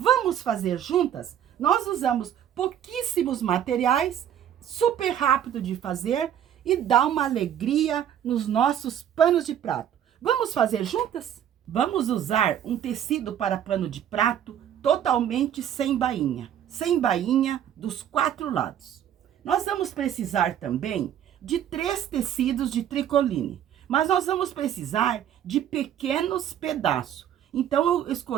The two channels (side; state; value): left; quieter; 10.1 dB